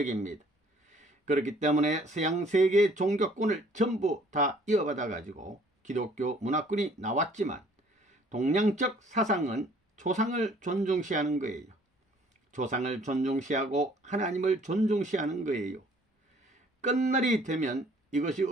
그렇기 때문에 서양 세계의 종교권을 전부 다 이어받아 가지고 기독교 문화권이 나왔지만 동양적 사상은 조상을 존중시하는 거예요. 조상을 존중시하고 하나님을 존중시하는 거예요. 끝날이 되면 이것이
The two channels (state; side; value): normal; both; correlation 0.58